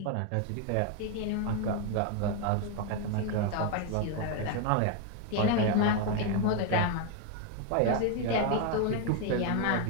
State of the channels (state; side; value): different; both; correlation 0.01